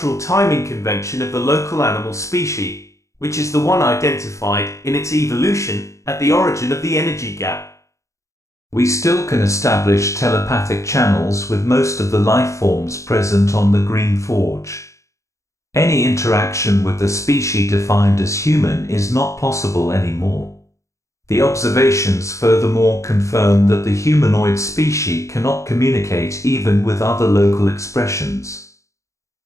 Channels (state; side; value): late; right; 0.15 ms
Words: timing convention of the local animal species, which is the one identified in its evolution at the origin of the energy gap. We still can establish telepathic channels with most of the life forms present on the Green Forge. Any interaction with the species defined as human is not possible anymore. The observations furthermore confirm that the humanoid species cannot communicate even with other local expressions.